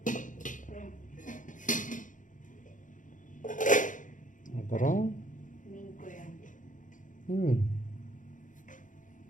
அப்புறம் மீன் குழம்பு.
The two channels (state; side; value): late; right; 0.37 ms